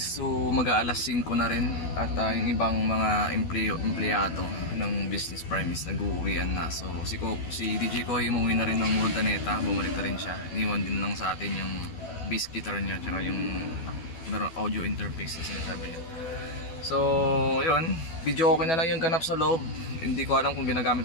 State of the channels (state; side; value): late; right; 12 ms